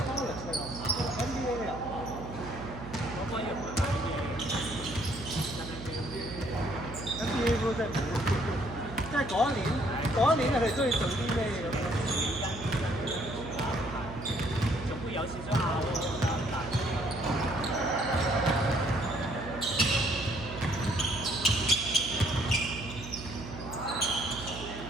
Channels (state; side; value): noise; right; hum, 12 dB below the sound